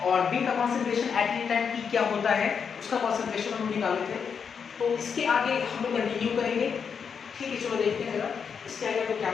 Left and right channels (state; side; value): quieter; right; 6.5 dB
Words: और बी का concentration at any time T क्या होता है उसका कॉन्सेंट्रेशन हम निकाले थे। तो इसके आगे हम लोग कंटिन्यू करेंगे। ठीक है, चलो देखते हैं जरा इसके आगे तो क्या